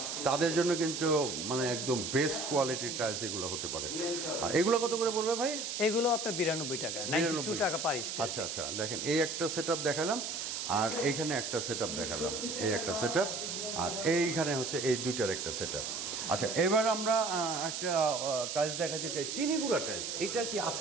তাদের জন্য কিন্তু মানে একদম বেস্ট কোয়ালিটির টাইলস এগুলো হতে পারে। এগুলো কত করে পড়বে ভাই? এগুলো আপনার 92 টাকা, 92 টাকা পার স্কয়ার। আচ্ছা আচ্ছা, দেখেন এই একটা সেটআপ দেখালাম, আর এইখানে একটা সেটআপ দেখালাম, এই একটা সেটআপ, আর এইখানে হচ্ছে এই দুইটার একটা সেটআপ। আচ্ছা, এবার আমরা একটা টাইলস দেখাতে চাই, চিনি গুঁড়া টাইলস। এটা কি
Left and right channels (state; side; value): noise; right; hiss, 4 dB below the sound